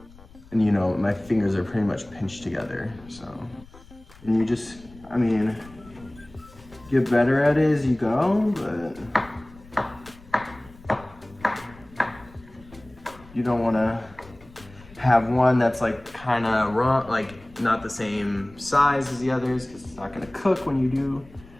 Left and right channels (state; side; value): noise; left; rumble, 22 dB below the sound